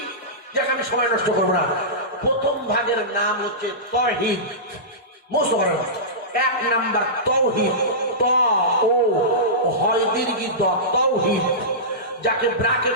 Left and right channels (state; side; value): normal; both; correlation -0.18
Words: যাকে আমি সময় নষ্ট করবো না। প্রথম ভাগের নাম হচ্ছে তাওহীদ। মুখস্থ করেন। 1 নাম্বার তাওহীদ, ত ও হয় দীর্ঘ দ, তাওহীদ, যাকে